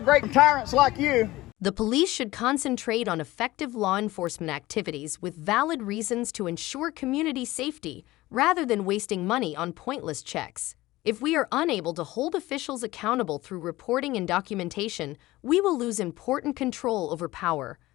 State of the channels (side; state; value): right; quieter; 18.1 dB